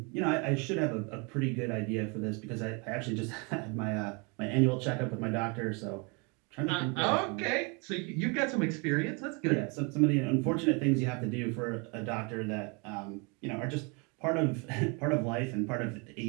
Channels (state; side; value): quieter; left; 31.5 dB